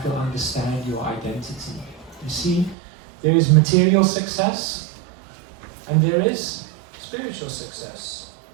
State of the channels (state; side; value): drops out; left; at 2.8 s